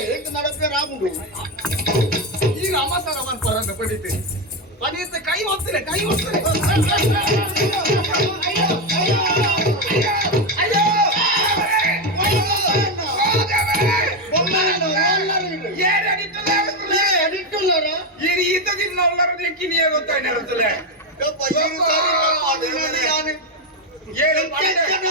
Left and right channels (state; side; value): normal; both; correlation 0.09